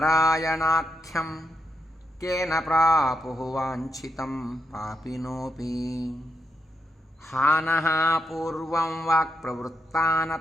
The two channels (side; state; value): both; normal; correlation 0.82